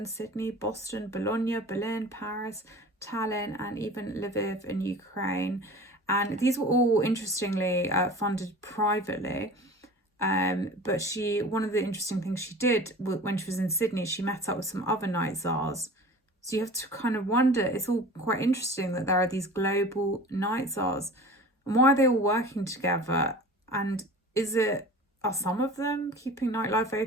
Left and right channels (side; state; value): both; normal; correlation 0.39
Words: Sydney, Boston, Bologna, Berlin, Paris, Tallinn, and even Lviv in Ukraine. And these were all, interestingly, funded privately. But one of the interesting things she did when she was in Sydney, she met up with some other Night Czars. So you have to kind of wonder, it's all quite interesting that there are these global Night Czars. And why are they all working together? And are some of them keeping nightlife